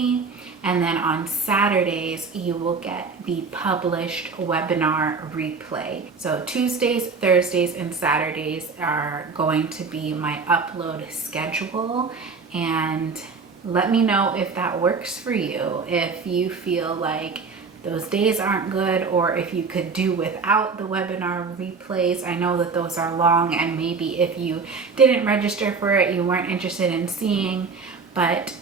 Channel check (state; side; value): quieter; left; 4.8 dB